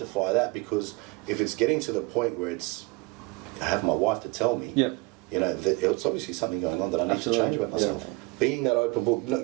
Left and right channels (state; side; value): quieter; left; 25.8 dB